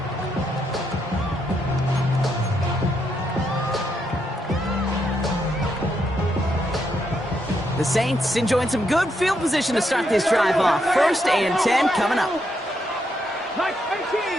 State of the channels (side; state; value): both; normal; correlation 0.79